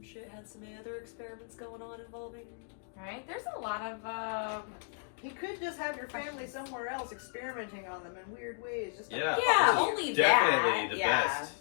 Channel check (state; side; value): silent; right; digital silence